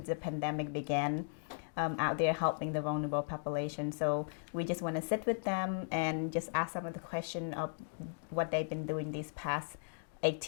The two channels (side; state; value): right; silent; digital silence